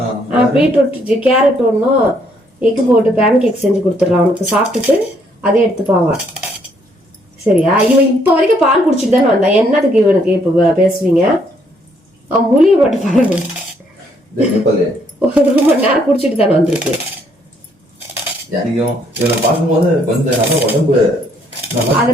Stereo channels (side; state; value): both; normal; correlation 0.69